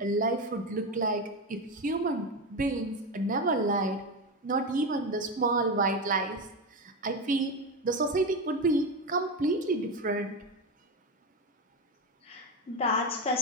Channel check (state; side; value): normal; both; correlation 0.16